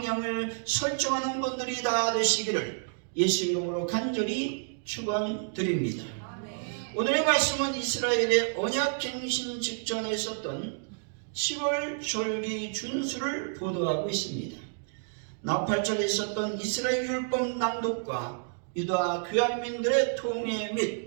설정하는 분들이 다 되시기를 예수 이름으로 간절히 축원드립니다. 오늘의 말씀은 이스라엘의 언약갱신 직전에 있었던 7월 절기 준수를 보도하고 있습니다. 나팔절에 있었던 이스라엘 율법 낭독과 유다 귀환민들의 통해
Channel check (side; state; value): left; silent; digital silence